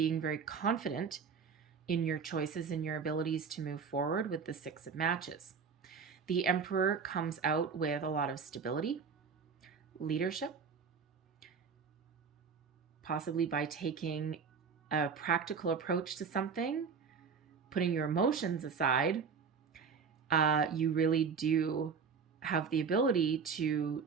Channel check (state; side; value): quieter; left; 5.9 dB